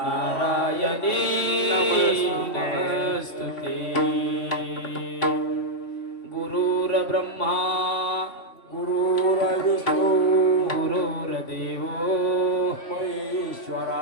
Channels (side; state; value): right; late; 3.5 ms